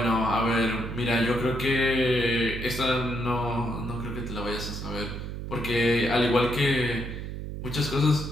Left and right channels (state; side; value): noise; right; hum, 7 dB below the sound